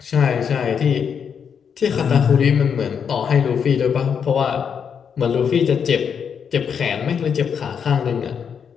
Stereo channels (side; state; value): right; quieter; 7.1 dB